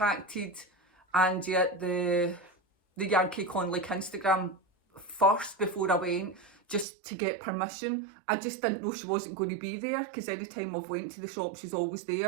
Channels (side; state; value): left; drops out; at 6.9 s